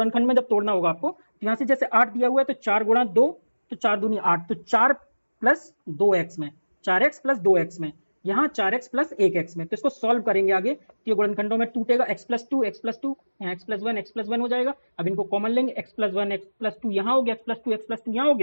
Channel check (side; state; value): both; inverted; correlation -1.00